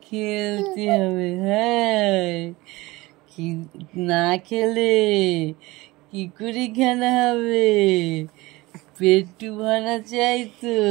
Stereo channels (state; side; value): quieter; left; 20.8 dB